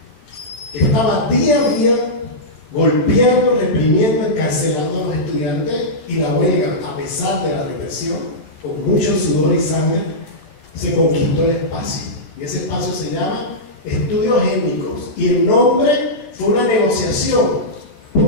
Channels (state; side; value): late; right; 13 ms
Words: que estaba día a día golpeando, reprimiendo, encarcelando a los estudiantes, y la huelga, a pesar de la represión, con mucho sudor y sangre, se conquistó el espacio. Y ese espacio se llama Estudios Étnicos. Y el nombre fue una negociación,